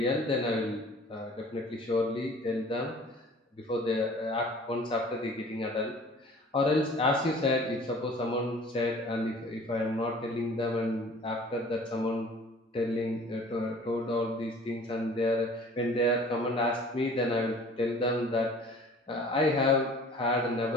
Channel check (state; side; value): normal; both; correlation 0.47